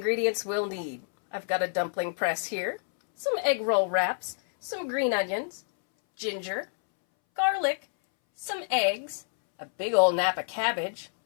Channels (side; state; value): right; silent; 59 dB below the other